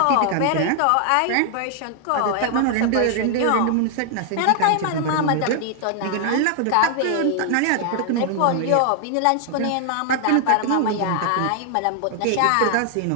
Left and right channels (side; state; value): both; different; correlation 0.00